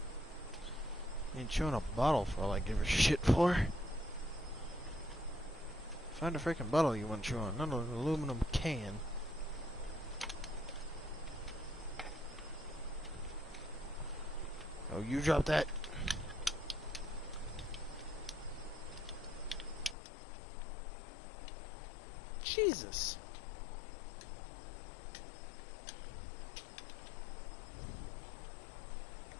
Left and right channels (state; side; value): drops out; right; at 20.0 s